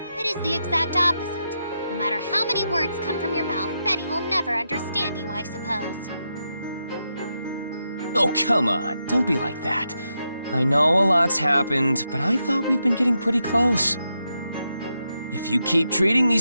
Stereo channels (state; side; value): inverted; both; correlation -0.85